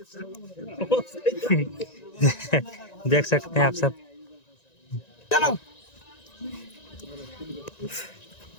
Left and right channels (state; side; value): late; right; 1.9 ms